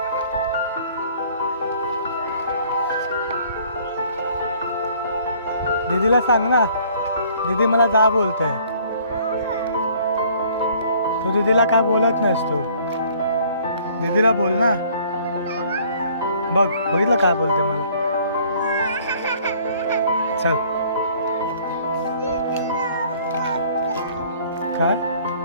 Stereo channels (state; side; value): inverted; both; correlation -0.57